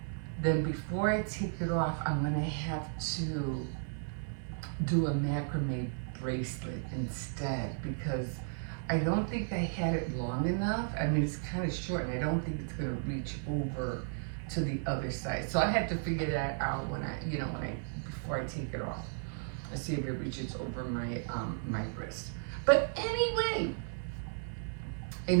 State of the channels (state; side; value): silent; left; 55 dB below the other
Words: then before I take it off, I'm gonna have to do a macrame bracelet instead, because I don't think I had it long enough. I mean, it's kind of short, and I don't think it's gonna reach over to the other side. So I have to figure that out when I, you know, before I take it off. I see if it reaches over my wrist. But anyway,